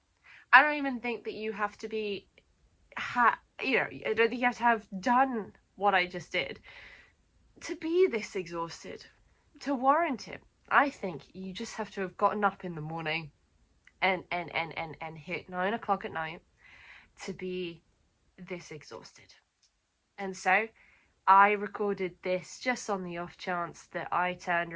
I don't even think that you have to be, I don't think you have to have done what I just did to be this exhausted, to warrant it. I think you just have to have gotten up in the morning and hit 9 o'clock at night to be this exhausted. And so I recorded this just on the off chance that I turned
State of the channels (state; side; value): identical; both; correlation 1.00